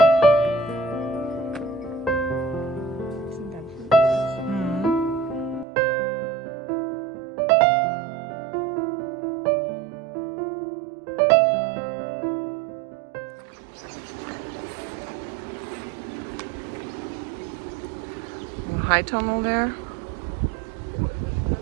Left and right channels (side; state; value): left; drops out; at 5.7 s